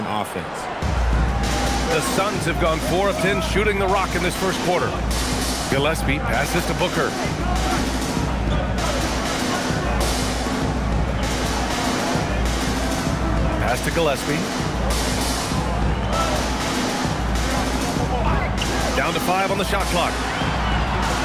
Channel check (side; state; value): both; identical; correlation 1.00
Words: offense. The Suns have gone 4 of 10 shooting the rock in this first quarter. Gillespie passes to Booker. Pass to Gillespie. Down to 5 on the shot clock.